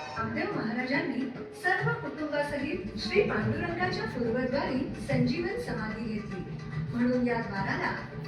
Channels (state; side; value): identical; both; correlation 1.00